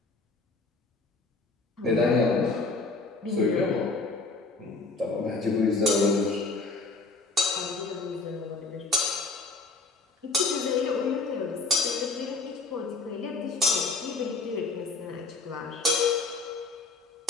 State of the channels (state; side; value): quieter; right; 3.7 dB